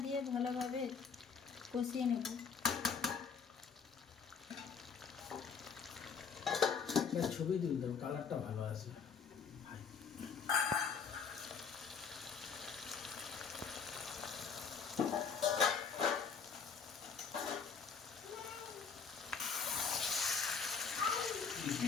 দিয়ে ভালোভাবে কষিয়ে নেব। ছবি দিন, কালারটা ভালো আছে।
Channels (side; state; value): right; quieter; 6.1 dB